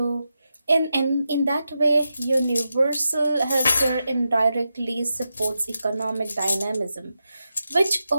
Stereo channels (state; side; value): inverted; both; correlation -0.88